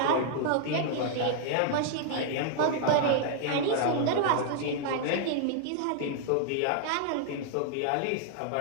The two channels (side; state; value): both; different; correlation 0.00